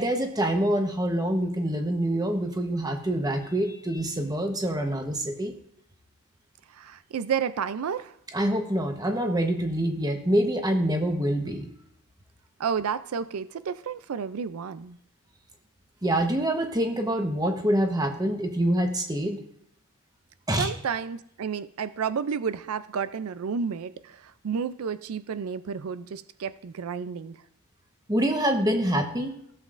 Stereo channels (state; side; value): normal; both; correlation 0.59